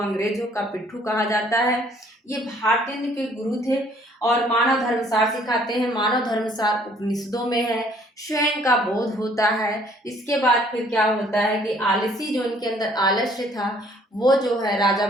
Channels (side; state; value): both; normal; correlation 0.60